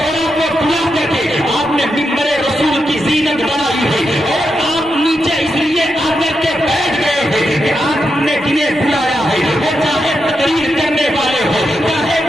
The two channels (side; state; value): both; normal; correlation 0.85